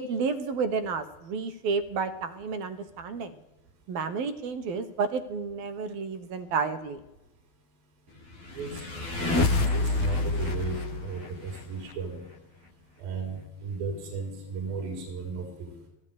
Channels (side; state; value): left; late; 12 ms